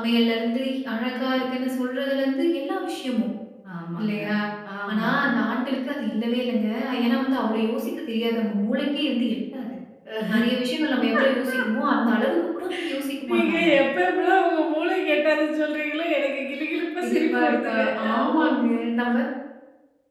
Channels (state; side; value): identical; both; correlation 1.00